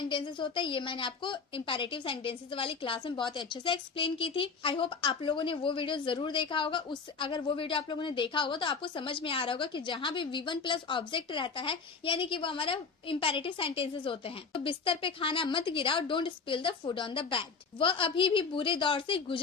होता है। ये मैंने आपको इंपेरेटिव सेंटेंसेस वाली क्लास में बहुत अच्छे से एक्सप्लेन की थी। आई होप आप लोगों ने वो वीडियो जरूर देखा होगा। अगर वो वीडियो आप लोगों ने देखा होगा तो आपको समझ में आ रहा होगा कि जहां भी V1 प्लस ऑब्जेक्ट रहता है यानी कि वो हमारा इंपेरेटिव सेंटेंसेस होते हैं। तो बिस्तर पे खाना मत गिराओ, don't spill the food on the bed. वह अभी भी बुरे दौर से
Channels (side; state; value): right; quieter; 5.2 dB